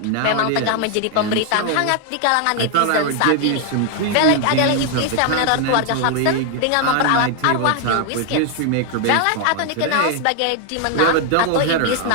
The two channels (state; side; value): different; both; correlation 0.00